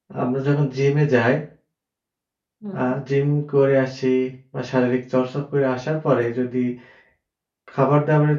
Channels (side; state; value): both; identical; correlation 1.00